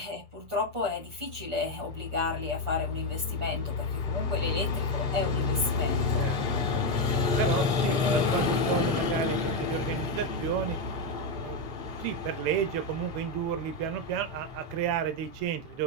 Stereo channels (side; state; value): left; late; 6.8 ms